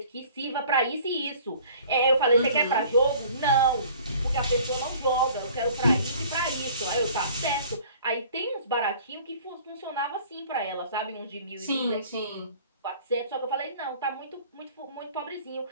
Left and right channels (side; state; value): both; inverted; correlation -0.50